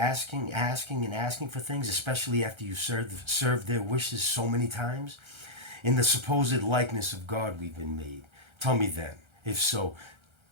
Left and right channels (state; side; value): late; left; 1.3 ms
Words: and asking for things, especially after you served their wishes so many times? In the supposed likeness of God we've been made. Tell me then, if so,